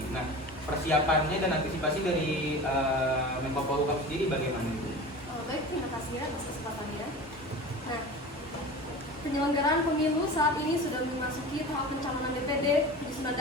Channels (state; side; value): normal; both; correlation 0.34